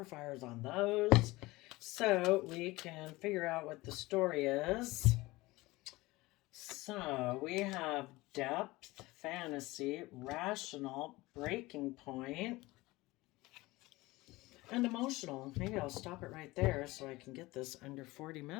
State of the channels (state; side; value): quieter; right; 20.4 dB